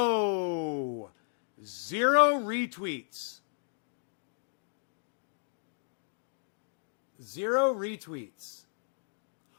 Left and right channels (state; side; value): silent; right; digital silence